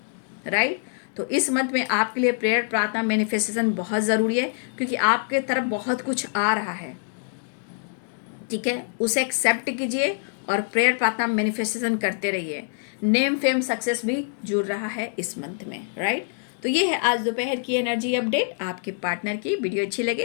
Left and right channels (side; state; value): right; silent; digital silence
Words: राइट। तो इस मंथ में आपके लिए प्रेयर, प्रार्थना, मैनिफेस्टेशन बहुत ज़रूरी है, क्योंकि आपके तरफ बहुत कुछ आ रहा है, ठीक है। उसे एक्सेप्ट कीजिए और प्रेयर, प्रार्थना, मैनिफेस्टेशन करते रहिए। नेम, फेम, सक्सेस भी जुड़ रहा है इस मंथ में, राइट। तो ये है आज दोपहर की एनर्जी अपडेट आपके पार्टनर की। वीडियो अच्छी